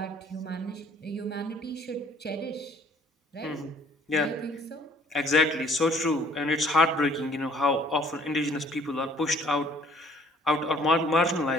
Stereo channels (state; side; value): normal; both; correlation 0.58